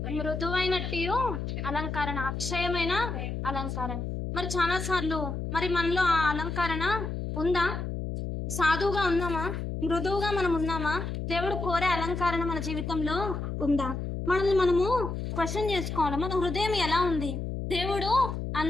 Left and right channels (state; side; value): noise; left; hum, 4 dB below the sound